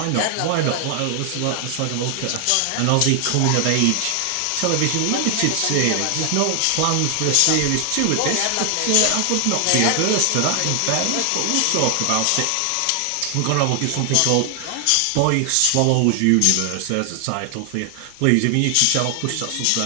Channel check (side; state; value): both; different; correlation 0.00